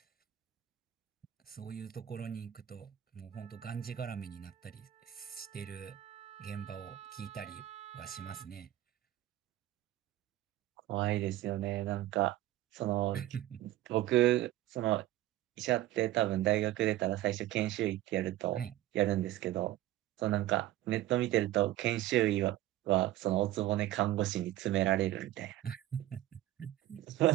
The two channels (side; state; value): left; quieter; 14.4 dB